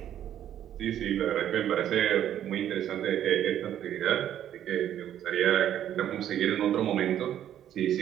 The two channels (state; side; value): quieter; left; 10.8 dB